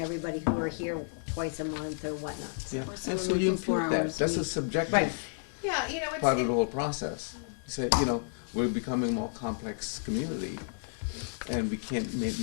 everybody who are here twice a month or whatnot. Yeah, Or and someone so you working 4 impute that, hours a that's a week. subjective Right. Yeah, part of the whole process. You say, we're becoming a more complex community, and we can't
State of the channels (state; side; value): silent; right; digital silence